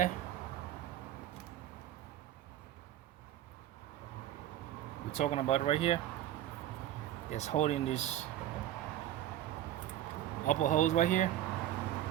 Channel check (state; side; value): quieter; left; 12.4 dB